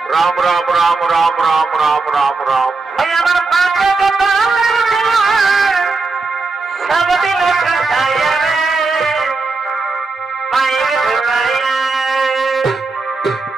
রাম রাম রাম রাম রাম রাম রাম রাম।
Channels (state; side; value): quieter; left; 3.9 dB